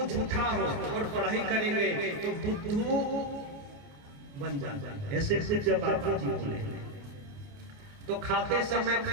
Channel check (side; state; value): left; late; 28 ms